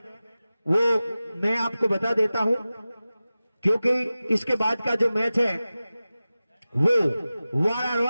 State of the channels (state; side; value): inverted; both; correlation -0.96